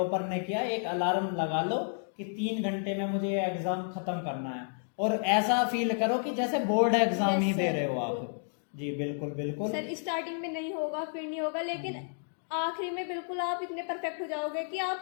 ने किया, एक अलार्म लगा लो कि 3 घंटे में मुझे ये एग्जाम खत्म करना है, और ऐसा फील करो कि जैसे बोर्ड एग्जाम Yes, ही दे sir. रहे हो आप। जी बिल्कुल बिल्कुल। सर स्टार्टिंग में नहीं होगा, फिर नहीं होगा, लेकिन आखिरी में बिल्कुल आप इतने परफेक्ट हो जाओगे कि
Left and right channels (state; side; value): silent; right; digital silence